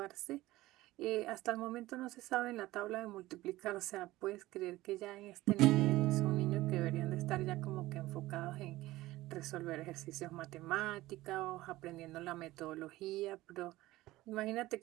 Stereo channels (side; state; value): left; quieter; 17.6 dB